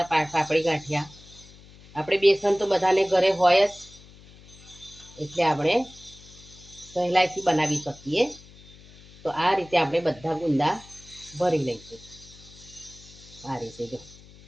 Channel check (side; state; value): left; noise; hum, 22 dB below the sound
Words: પાપડી ગાંઠિયા। આપણે બેસન તો બધાને ઘરે હોય જ, એટલે આપણે સહેલાઈથી બનાવી શકીએ। તો આ રીતે આપણે બધા ગુંદા ભરી લઈશું। આ રીતે જો